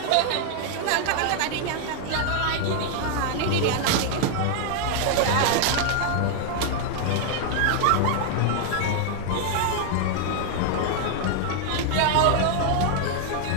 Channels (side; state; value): both; different; correlation 0.00